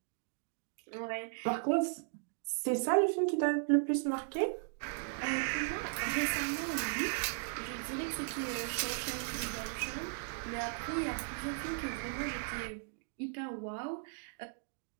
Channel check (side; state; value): left; silent; digital silence